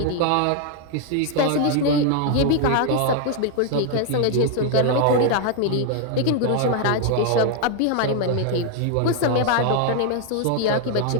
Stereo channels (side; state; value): both; different; correlation 0.00